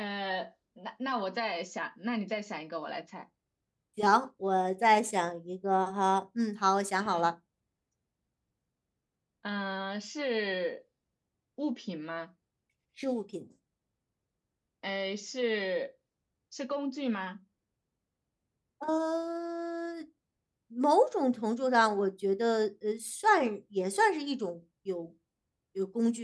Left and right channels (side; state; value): both; identical; correlation 1.00